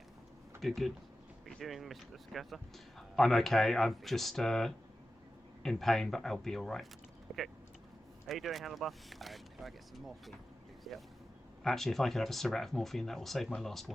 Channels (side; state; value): both; normal; correlation 0.93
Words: Good, good. What are you doing, Mr. Scatter? I'm okay. I'm just in pain, but I'll be alright. Okay. How you doing, Handlebar? Could I get some morphine, please? Yep. Actually, if I could have a syrup of morphine, that will save my last